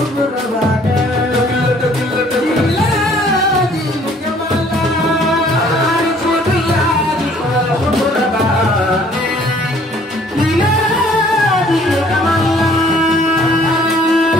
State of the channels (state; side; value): normal; both; correlation 0.58